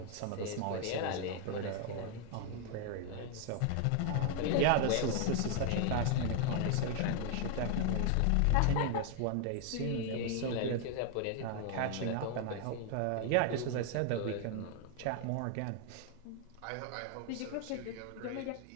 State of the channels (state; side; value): different; both; correlation 0.00